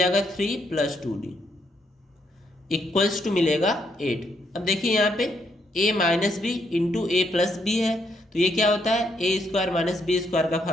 3 प्लस 2D इक्वल्स टू मिलेगा 8। अब देखिए यहाँ पे A minus B into A plus B है तो ये क्या होता है A square minus B square का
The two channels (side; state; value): both; normal; correlation 0.75